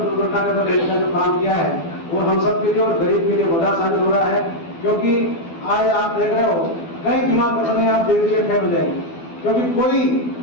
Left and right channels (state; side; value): late; right; 12 ms